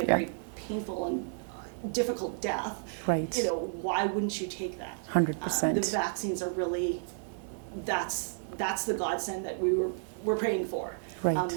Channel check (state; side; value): silent; left; digital silence